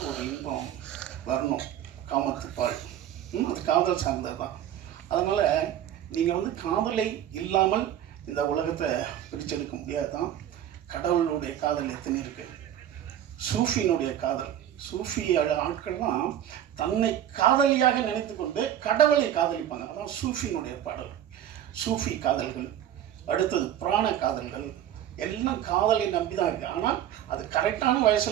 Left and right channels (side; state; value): left; quieter; 10.9 dB